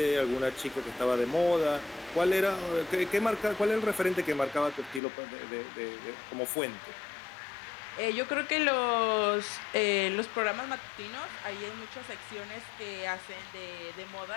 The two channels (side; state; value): right; drops out; at 5.0 s